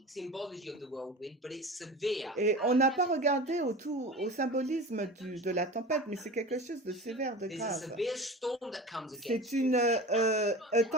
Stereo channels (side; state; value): both; normal; correlation 0.34